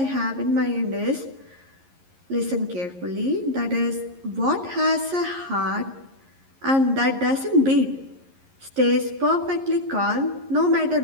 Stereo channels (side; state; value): left; late; 11 ms